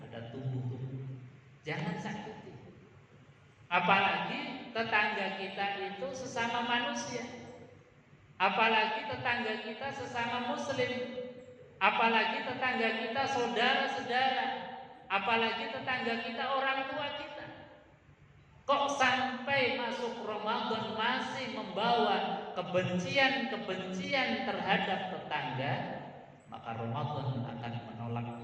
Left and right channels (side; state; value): both; identical; correlation 1.00